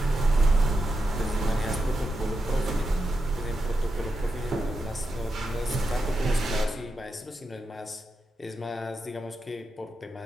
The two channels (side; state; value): both; normal; correlation 0.87